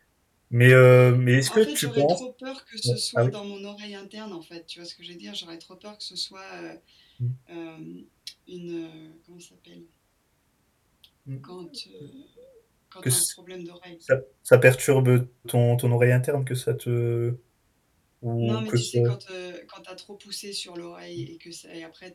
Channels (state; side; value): identical; both; correlation 1.00